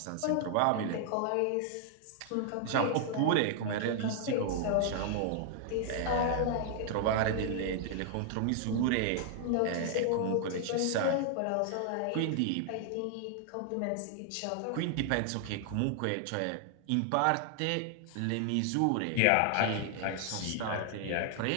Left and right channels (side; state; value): both; different; correlation 0.00